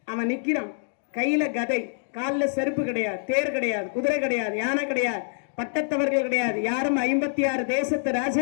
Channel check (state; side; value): silent; right; digital silence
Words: அவன் நிக்கிறான். கையில கதை, காலில் செருப்பு கிடையாது, தேர் கிடையாது, குதிரை கிடையாது, யானை கிடையாது, பட்டத்தவர்கள் கிடையாது, யாரும் 56 தேசத்து